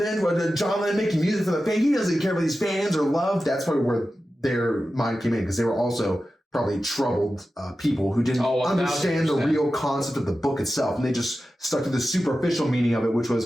John Lennon making music for the fans. He doesn't care about these fans or love. That's probably where their mind came in, because they were also probably troubled people who didn't understand the real concept of the book itself. And they just stuck to the superficial meaning of it, which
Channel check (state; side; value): normal; both; correlation 0.93